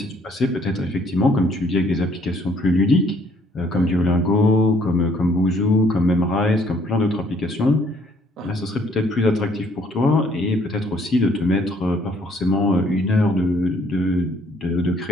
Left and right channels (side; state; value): both; normal; correlation 0.64